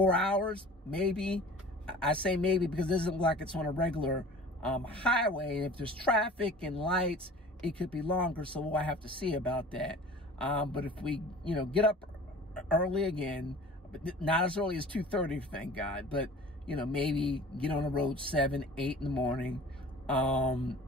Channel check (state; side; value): normal; both; correlation 0.43